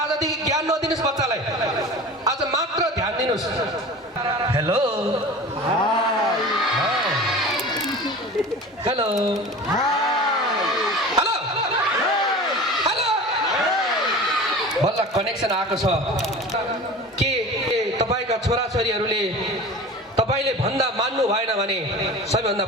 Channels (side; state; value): both; normal; correlation 0.36